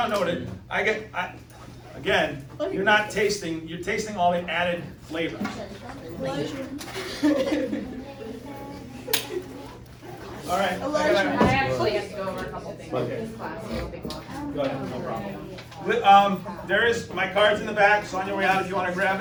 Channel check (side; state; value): both; identical; correlation 1.00